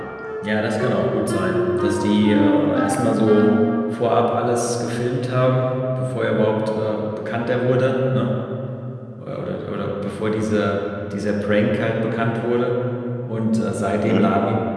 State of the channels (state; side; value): identical; both; correlation 1.00